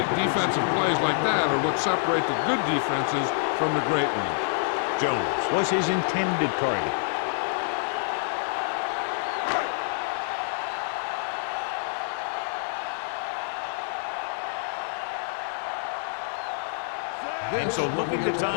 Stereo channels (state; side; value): silent; right; digital silence